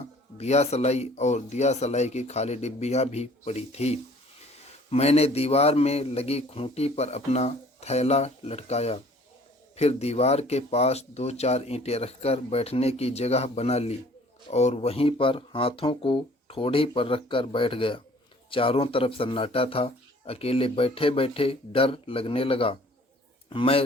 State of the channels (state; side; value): normal; both; correlation 0.54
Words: दिया सलाई और दिया सलाई की खाली डिब्बियाँ भी पड़ी थी। मैंने दीवार में लगी खूंटी पर अपना थैला लटकाया। फिर दीवार के पास 2-4 ईंटें रखकर बैठने की जगह बना ली और वहीं पर हाथों को ठोड़ी पर रखकर बैठ गया। चारों तरफ सन्नाटा था। अकेले बैठे बैठे डर लगने लगा। मैं